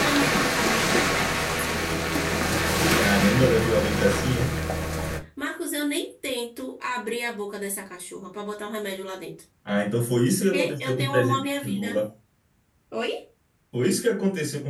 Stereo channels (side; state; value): both; identical; correlation 1.00